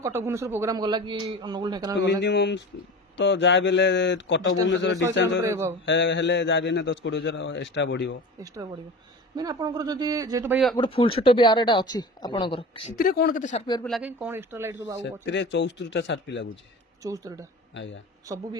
କଟକ ଭୁବନେଶ୍ୱର ପ୍ରୋଗ୍ରାମ ଗଲା କି ଅନୁଗୁଳ ଢେଙ୍କାନାଳ ମିନିମମ୍ ତ ଯାହା ବି ହେଲେ କଟକ ଭୁବନେଶ୍ୱର ଡିଷ୍ଟାନ୍ସ ହେଲେ ଯାହା ବି 10-20 ହଜାର ଏକ୍ସଟ୍ରା ବଢିବ। ମାନେ ଆପଣଙ୍କର ଯଦି ଯେହେତୁ ଭାଇ ଗୋଟେ ଫୁଲ ସେଟଅପ୍ ୟାର ଏଟା ଅଛି ଆପଣଙ୍କର, ସେଥିରେ କଣ କେତେ ସାର୍ପି ଲାଗେ, କଣ ଏକ୍ସଟ୍ରା ଲାଇଟ୍ ସବୁ? ସେଥିରେ 74ଟା ସାର୍ପି ଲାଗୁଛି। 74ଟା ଆଜ୍ଞା, ସବୁ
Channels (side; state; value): both; normal; correlation 0.33